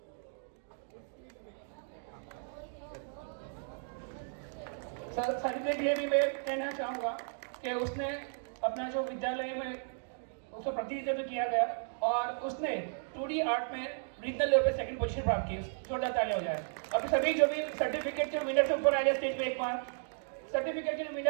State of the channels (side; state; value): left; silent; digital silence